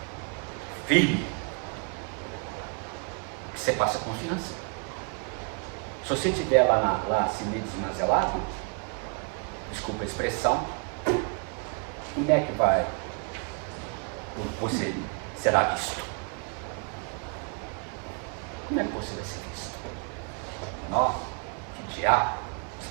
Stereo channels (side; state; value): left; quieter; 38.9 dB